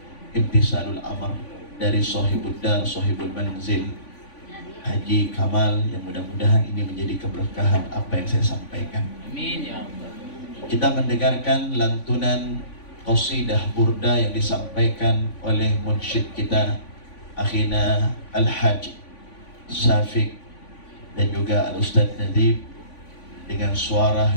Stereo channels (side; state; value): right; late; 3.5 ms